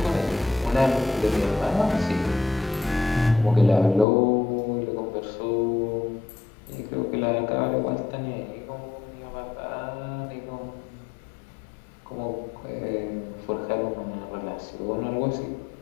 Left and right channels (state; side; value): drops out; right; at 4.0 s